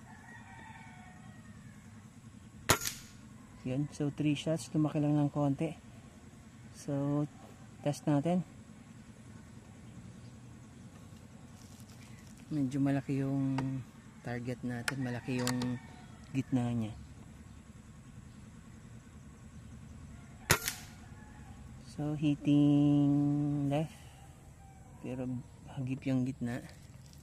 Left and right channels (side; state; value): both; identical; correlation 1.00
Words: Yun. So 3 shots, lumaki lang ng konti. So test natin. Medyo malaki yung target natin, malaki yung gitna niya. So hitting left, pero hagip yung gitna.